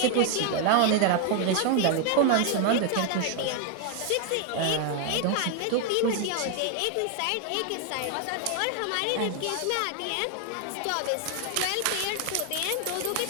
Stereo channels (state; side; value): different; both; correlation 0.01